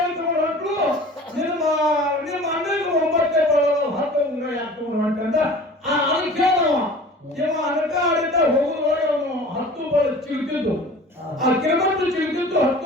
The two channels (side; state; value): both; normal; correlation 0.42